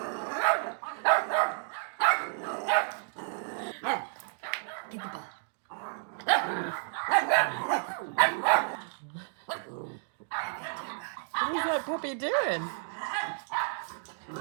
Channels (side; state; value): left; silent; digital silence